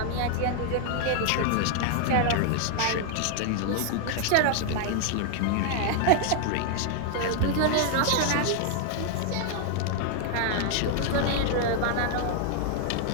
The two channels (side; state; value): both; different; correlation 0.00